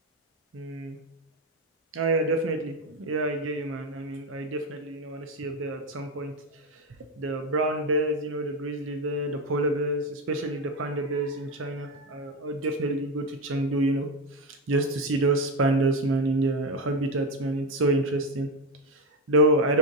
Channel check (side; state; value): both; normal; correlation 0.13